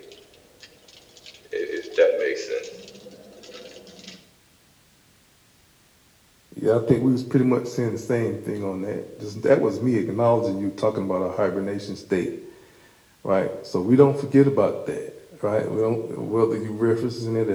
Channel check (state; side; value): identical; both; correlation 1.00